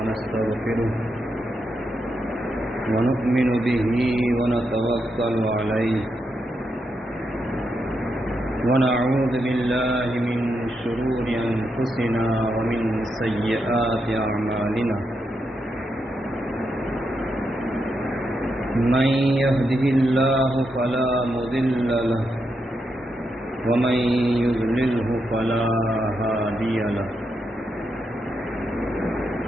ونؤمن به ونتوكل عليه ونعوذ بالله من شرور أنفسنا ومن سيئات أعمالنا من يهده الله فلا مضل له ومن يضلله فلا هادي له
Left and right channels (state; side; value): normal; both; correlation 0.83